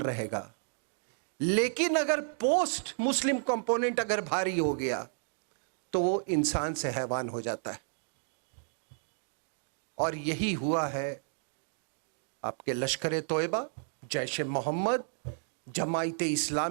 रहेगा। लेकिन अगर पोस्ट मुस्लिम कंपोनेंट अगर भारी हो गया तो वो इंसान से हैवान हो जाता है। और यही हुआ है आपके लश्कर तोयबा, जैश मोहम्मद, जमायत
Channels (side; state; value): left; silent; digital silence